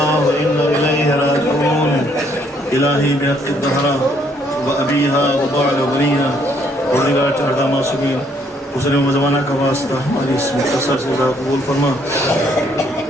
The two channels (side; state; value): both; normal; correlation 0.68